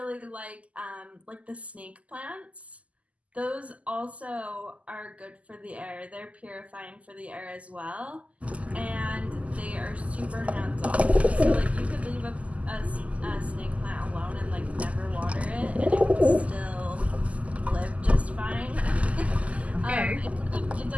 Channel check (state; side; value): late; left; 0.069 ms